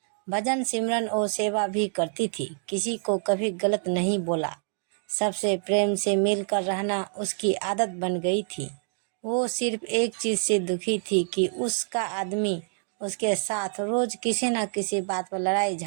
भजन सिमरन और सेवा भी करती थी। किसी को कभी गलत नहीं बोला। सबसे प्रेम से मिलकर रहना उसकी आदत बन गई थी। वो सिर्फ एक चीज से दुखी थी कि उसका आदमी उसके साथ रोज किसी न किसी बात पर लड़ाई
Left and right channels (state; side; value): silent; left; 60 dB below the other